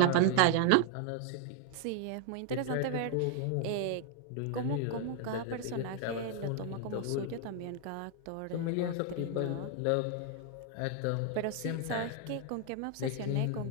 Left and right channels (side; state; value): both; different; correlation 0.01